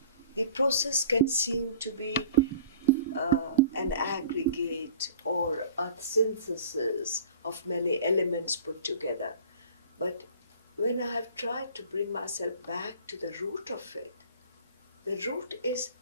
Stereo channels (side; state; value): both; inverted; correlation -0.46